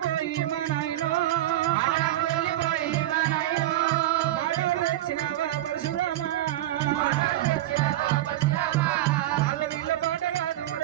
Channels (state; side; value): quieter; left; 14.5 dB